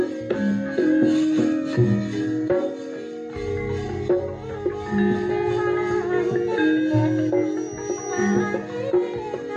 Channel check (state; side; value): identical; both; correlation 1.00